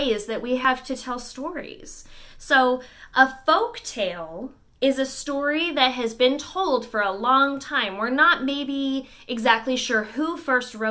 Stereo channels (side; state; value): both; identical; correlation 1.00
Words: that we have to tell stories. So, a folk tale is a story that has been told for a long time. We're not maybe exactly sure who first